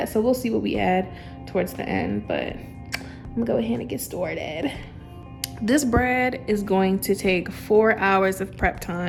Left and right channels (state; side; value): identical; both; correlation 1.00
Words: So we'll see what we add towards the end, but I'm gonna go ahead and get started. This bread is going to take 4 hours of prep